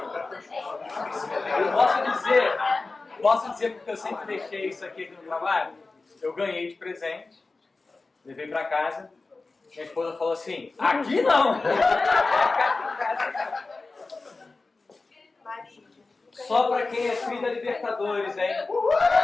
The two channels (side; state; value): right; quieter; 3.7 dB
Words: Eu posso dizer porque eu sempre deixei isso aqui no trabalho. Eu ganhei de presente, levei para casa. Minha esposa falou assim: aqui não! Só para quem é filho da Libertadores, hein?